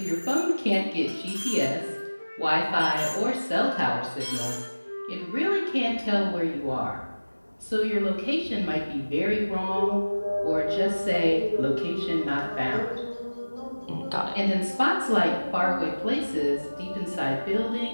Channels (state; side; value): inverted; both; correlation -1.00